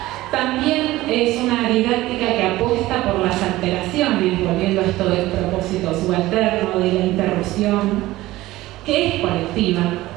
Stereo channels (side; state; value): left; quieter; 17.3 dB